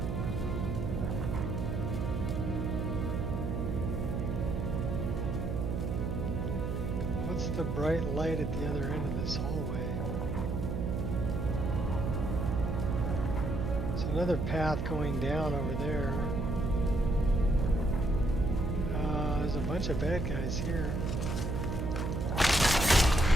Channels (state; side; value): noise; right; hum, 2 dB below the sound